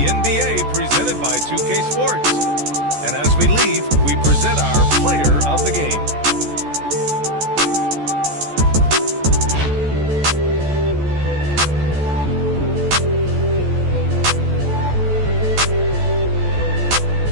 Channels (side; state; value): left; late; 14 ms